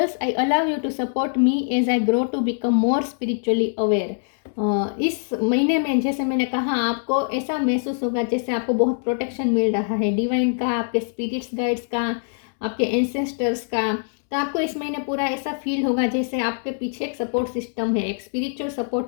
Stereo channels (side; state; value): right; silent; digital silence